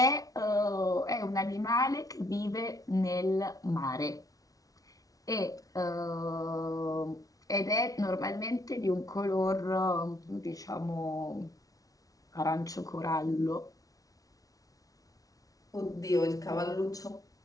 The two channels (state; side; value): late; right; 0.18 ms